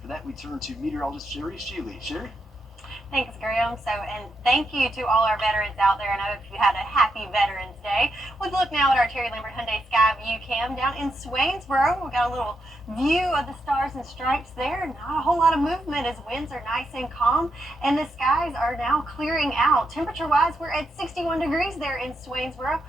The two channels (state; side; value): normal; both; correlation 0.82